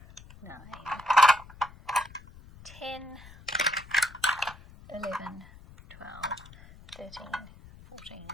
9, 10, 11, 12, 13, 14,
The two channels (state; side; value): noise; left; rumble, 20 dB below the sound